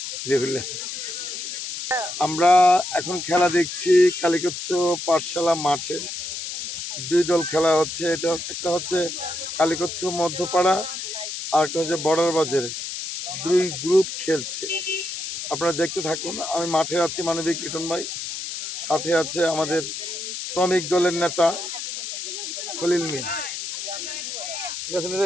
আমরা এখন খেলা দেখছি কালিকচ্ছ পাঠশালা মাঠে দুই দল খেলা হচ্ছে। এটা একটা হচ্ছে কালিকচ্ছ মধ্যপাড়া আর একটা হচ্ছে বর্ডার বাজার, দুই গ্রুপ খেলছে। আপনারা দেখতে থাকুন। আমি মাঠে আছি, মানবিক লিটন ভাই, সাথে আছে আমাদের শ্রমিক দলের নেতা খলিল মিয়া। ঠিক আছে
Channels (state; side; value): noise; left; hiss, 6 dB below the sound